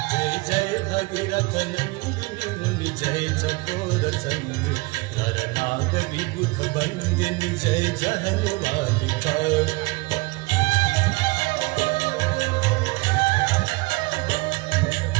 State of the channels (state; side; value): quieter; left; 24.5 dB